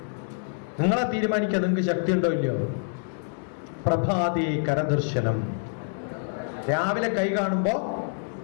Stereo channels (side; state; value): right; silent; digital silence